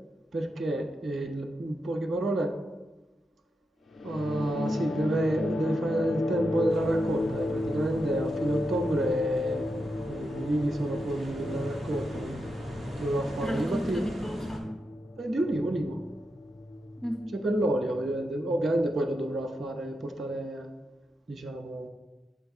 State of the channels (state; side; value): normal; both; correlation 0.86